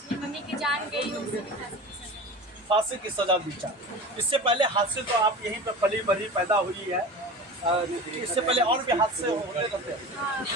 मम्मी की जान गई हो, फांसी की सजा दी जाए। इससे पहले हादसे तो आप यहीं पर पली बड़ी पैदा हुई है, इससे पहले और भी हादसे होते रहते हैं।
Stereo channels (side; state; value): both; normal; correlation 0.33